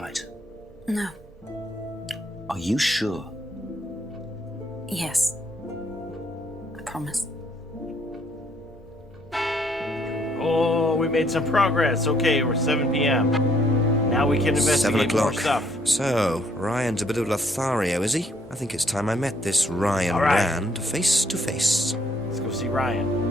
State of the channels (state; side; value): normal; both; correlation 0.67